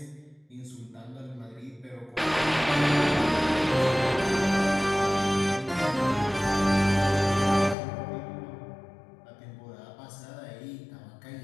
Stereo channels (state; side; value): drops out; right; at 7.8 s